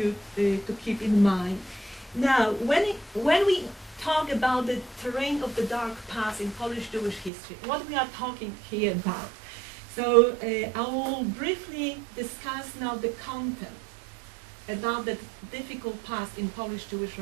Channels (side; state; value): left; drops out; at 7.3 s